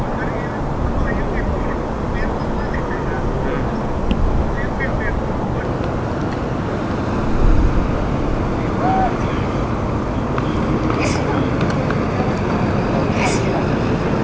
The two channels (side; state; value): both; identical; correlation 1.00